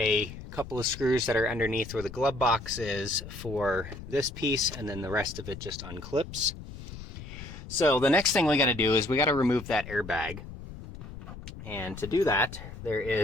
couple of screws that are underneath where the glove box is for this piece, and then the rest of it just unclips. So the next thing we got to do is we got to remove that airbag. And to do that, there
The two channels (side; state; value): left; noise; rumble, 12 dB below the sound